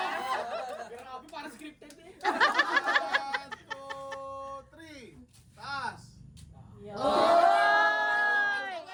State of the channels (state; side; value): identical; both; correlation 1.00